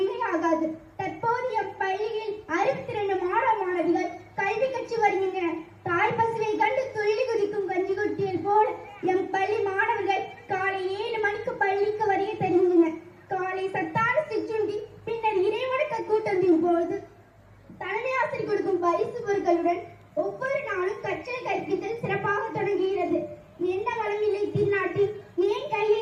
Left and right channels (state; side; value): identical; both; correlation 1.00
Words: தற்போது எம் பள்ளியில் 62 மாணவ மாணவிகள் கல்வி கற்று வருகின்றனர். தாய் பசுவை கண்டு துள்ளி குதிக்கும் கஞ்சி கொட்டியல் போல எம் பள்ளி மாணவர்கள் காலை 7 மணிக்கு பள்ளிக்கு வருகை தருகின்றனர். காலை சத்தான சிற்றுண்டி, பின்னர் இறைவணக்க கூட்டத்தின் போது தலைமை ஆசிரியர் கொடுக்கும் பரிசு பொருட்களுடன் ஒவ்வொரு நாளும் கற்றல் கற்பித்தல் சிறப்பாக தொடங்குகிறது. என்ன வளமில்லை திருநாட்டில், ஏன்